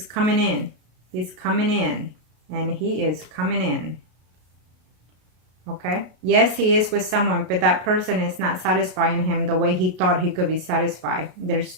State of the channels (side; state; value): left; late; 33 ms